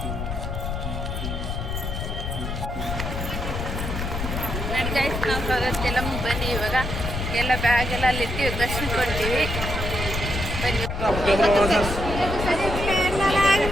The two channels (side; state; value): left; noise; rumble, 4 dB below the sound